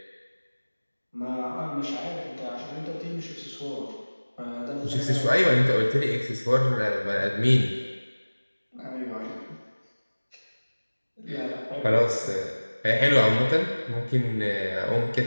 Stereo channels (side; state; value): both; inverted; correlation -1.00